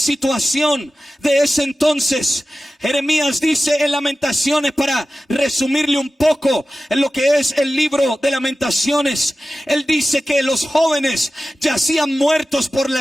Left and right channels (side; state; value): both; normal; correlation 0.95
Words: de ese entonces. Jeremías dice en Lamentaciones, para resumirle un poco en lo que es el libro de Lamentaciones, él dice que los jóvenes yacían muertos por